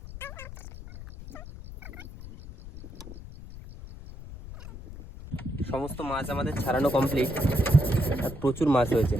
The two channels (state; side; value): noise; left; rumble, 13 dB below the sound